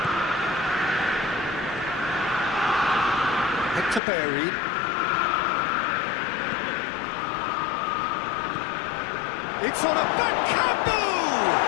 Hector Bellerin. It's on a back camboo!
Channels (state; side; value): drops out; right; at 4.0 s